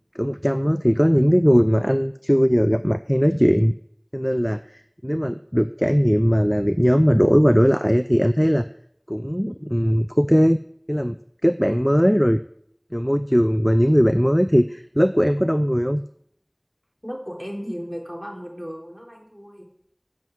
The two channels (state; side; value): identical; both; correlation 1.00